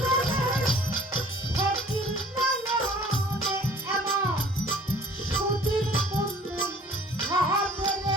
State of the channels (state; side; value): normal; both; correlation 0.52